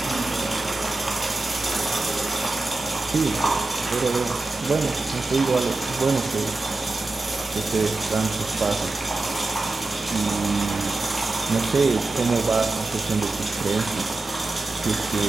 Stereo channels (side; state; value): left; quieter; 3.3 dB